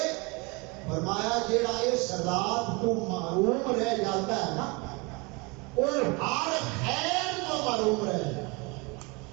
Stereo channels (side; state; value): left; quieter; 28.0 dB